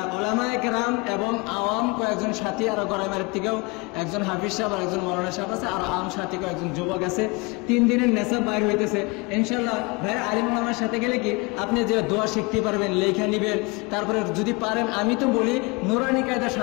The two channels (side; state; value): right; quieter; 27.5 dB